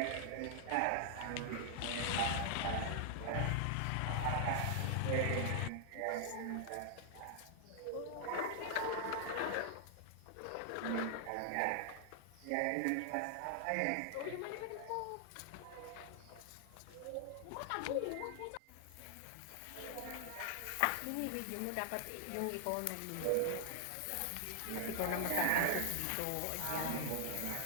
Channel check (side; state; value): both; different; correlation -0.01